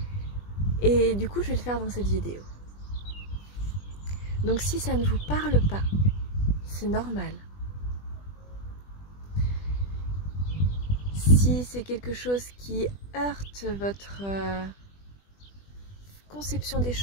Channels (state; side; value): late; right; 20 ms